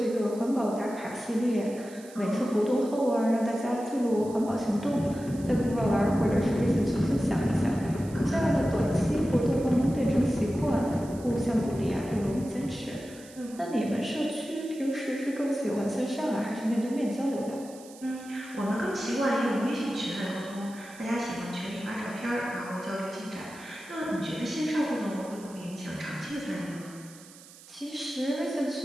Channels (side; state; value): right; noise; hiss, 20 dB below the sound